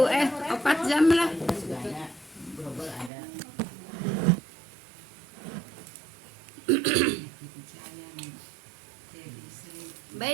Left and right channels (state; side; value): drops out; left; at 3.1 s